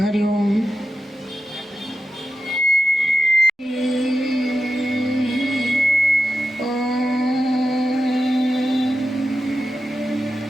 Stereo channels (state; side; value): normal; both; correlation 0.90